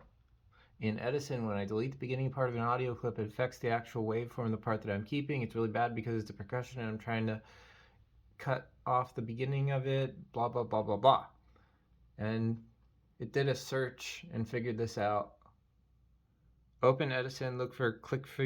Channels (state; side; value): identical; both; correlation 1.00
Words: in Edison, when I delete the beginning part of an audio clip, it affects the actual waveform, the part that I'm keeping. It's really bad because it's a percussion and I'm trying to cut off the beginning of it, blah, blah, blah, blah, blah. And it did a search and figured this out. Open Edison, look for